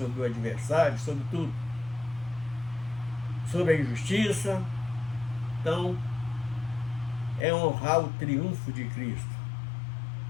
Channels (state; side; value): drops out; right; at 7.5 s